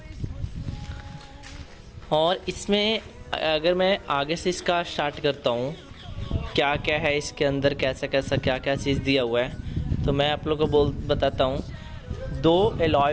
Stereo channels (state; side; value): identical; both; correlation 1.00